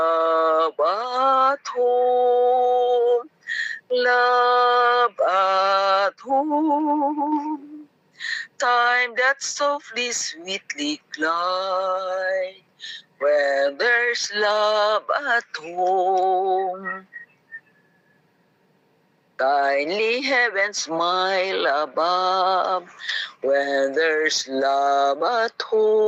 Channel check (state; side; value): identical; both; correlation 1.00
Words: at home. Love at home. Time that softly, sweetly glide when there's love at home. Kindly heaven smile above when there's love at